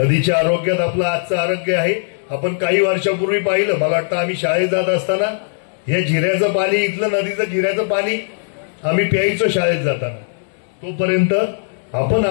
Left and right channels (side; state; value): right; silent; digital silence